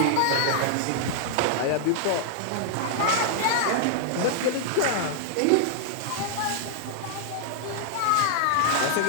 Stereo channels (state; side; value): different; both; correlation -0.01